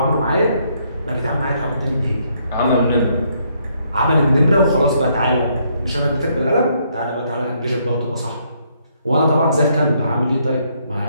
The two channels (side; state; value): both; inverted; correlation -0.72